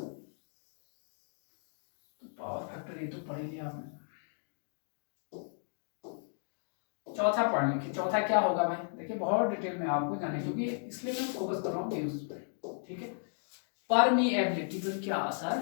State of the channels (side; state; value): right; silent; digital silence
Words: पावर फैक्टर ये तो पढ़ ही लिया आपने। चौथा पॉइंट लिखिए, चौथा क्या होगा भाई, देखिए बहुत डिटेल में आपको जाने, क्योंकि इसलिए मैं फोकस कर रहा हूँ न्यूज पे, ठीक है। परमीएबिलिटी पर क्या असर